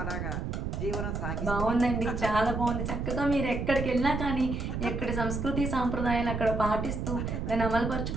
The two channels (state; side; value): noise; right; rumble, 3 dB below the sound